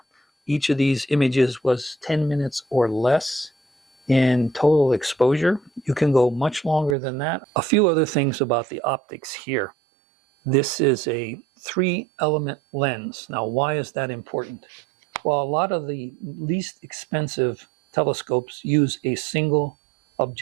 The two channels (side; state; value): left; drops out; at 7.0 s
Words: each of these images was 10 minutes or less in total exposure. You can go much longer than that. A few other things about the optics here. This is a 3-element lens. Now, why is that important? Well, a lot of the least expensive telescopes use a single